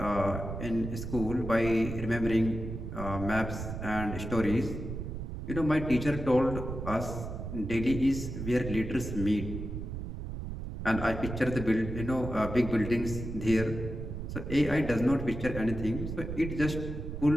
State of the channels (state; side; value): noise; right; rumble, 6 dB below the sound